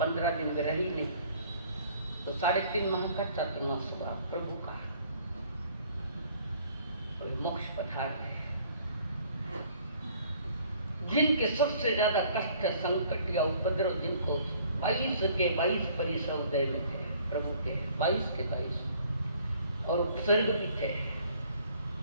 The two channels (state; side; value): inverted; both; correlation -0.58